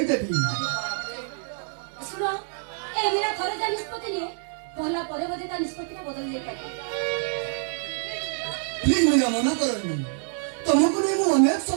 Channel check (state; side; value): silent; left; 61 dB below the other